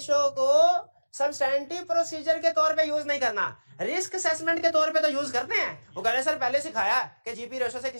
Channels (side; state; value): both; inverted; correlation -1.00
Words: को सब्सटैंटिव प्रोसीजर के तौर पे यूज नहीं करना, रिस्क असेसमेंट के तौर पे तो यूज करते हैं। वो कह रहे सर पहले सिखाया कि जीपी रेशो से